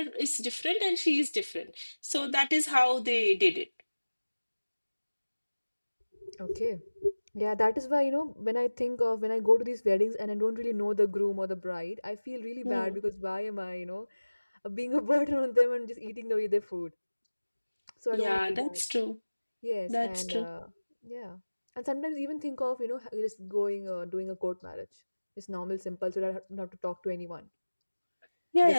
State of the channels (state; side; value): inverted; both; correlation -1.00